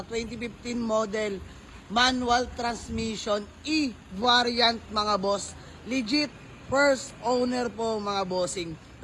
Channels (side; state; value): both; identical; correlation 1.00